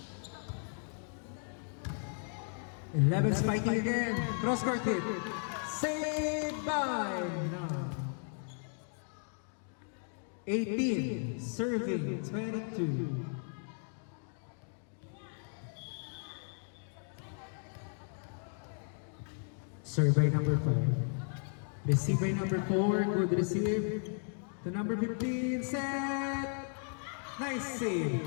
Eleven spiking again. Cross court hit. Saved by no. 18 serving 22. Serve by number 5. Receive by number 4. Good receive. To number 15. Set. Nice save.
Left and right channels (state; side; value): silent; right; 54 dB below the other